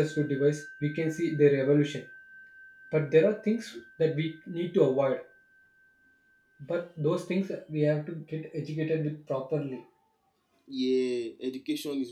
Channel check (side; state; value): both; identical; correlation 1.00